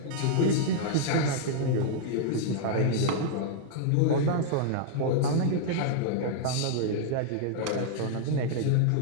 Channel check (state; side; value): different; both; correlation -0.01